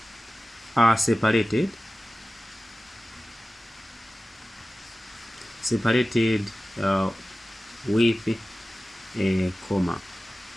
are separated with a comma.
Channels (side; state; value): both; normal; correlation 0.96